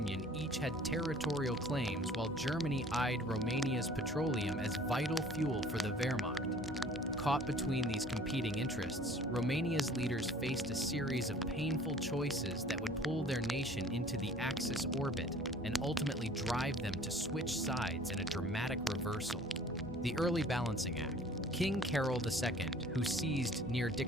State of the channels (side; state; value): both; normal; correlation 0.50